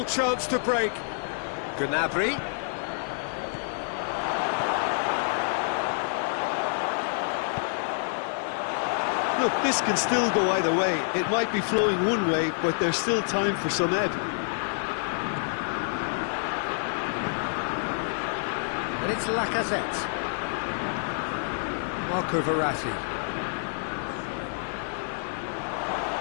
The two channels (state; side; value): silent; right; digital silence